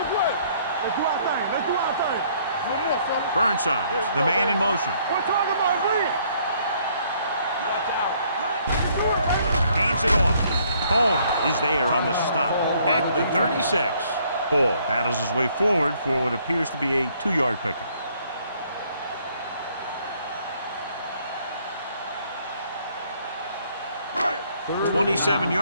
a play. Let's do our thing. Let's do our thing. One more, fella. Burnside, the man in motion. We're talking about win. Hands it off. Holmes is there on the stop at the 36. Ball battles his way forward for what appears to be a 2-yard pickup.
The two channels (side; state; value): both; inverted; correlation -0.65